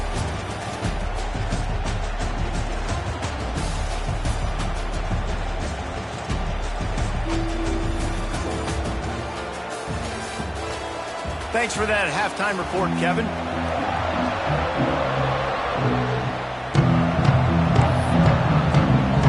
Thanks for that halftime report, Kevin.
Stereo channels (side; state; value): both; identical; correlation 1.00